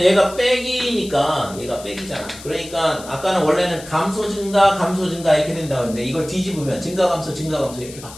얘가 빼기니까 얘가 빼기잖아. 그러니까 아까는 원래는 감소 증가 이렇게 된다고 했는데 이걸 뒤집으면 증가 감소 이렇게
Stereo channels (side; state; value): left; noise; hiss, 16 dB below the sound